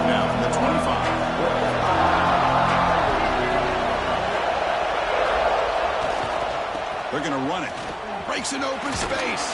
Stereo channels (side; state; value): both; identical; correlation 1.00